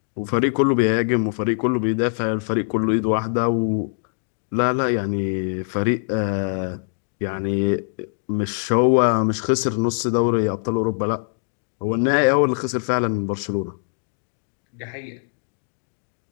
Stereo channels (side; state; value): right; silent; digital silence